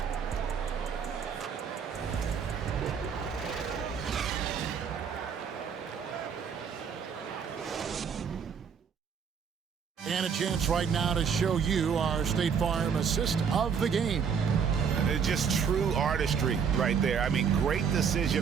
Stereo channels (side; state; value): left; quieter; 6.7 dB